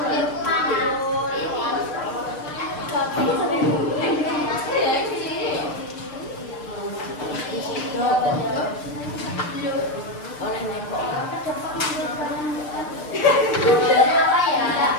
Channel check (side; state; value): right; late; 6.7 ms